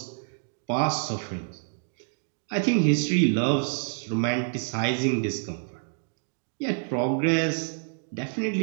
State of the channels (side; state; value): left; silent; 60 dB below the other